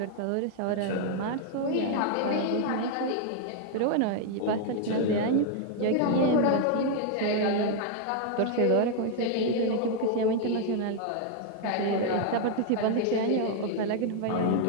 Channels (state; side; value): different; both; correlation 0.00